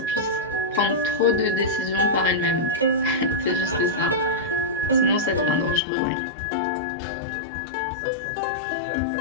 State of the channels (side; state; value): right; drops out; at 5.8 s